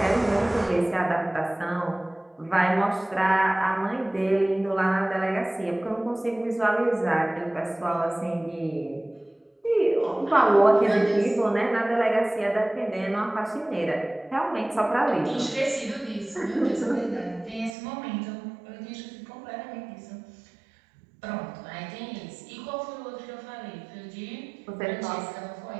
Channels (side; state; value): left; drops out; at 17.8 s